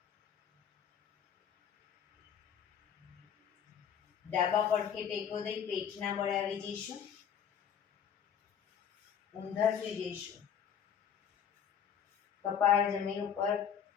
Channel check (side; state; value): right; quieter; 8.2 dB